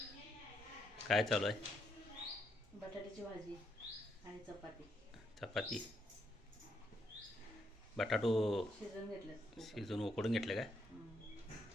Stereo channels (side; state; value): both; normal; correlation 0.76